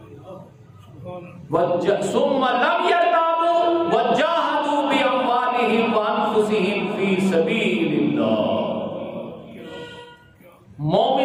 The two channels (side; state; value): both; identical; correlation 1.00